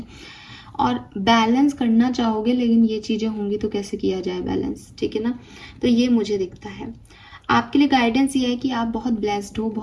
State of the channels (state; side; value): identical; both; correlation 1.00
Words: और बैलेंस करना चाहोगे, लेकिन ये चीज़ें होंगी तो कैसे किया जाए बैलेंस, ठीक है ना। तो ये मुझे दिखता है। आपके लिए गाइडेंस ये है कि आप बहुत ब्लेस्ड हो,